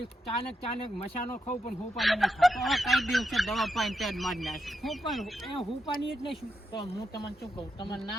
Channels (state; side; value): normal; both; correlation 0.85